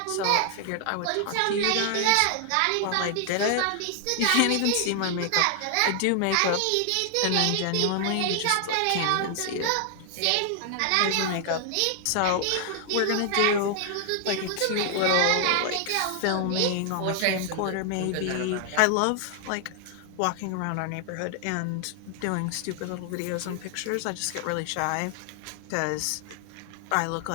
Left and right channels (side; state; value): both; different; correlation 0.00